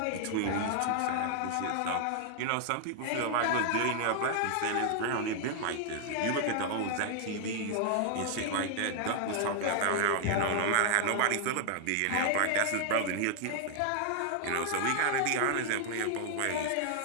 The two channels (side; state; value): both; different; correlation 0.00